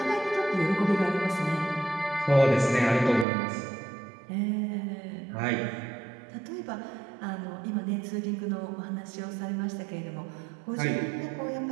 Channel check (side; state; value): left; drops out; at 3.2 s